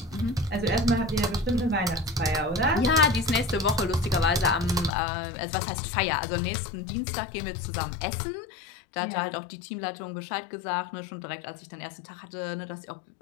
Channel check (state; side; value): drops out; right; at 4.9 s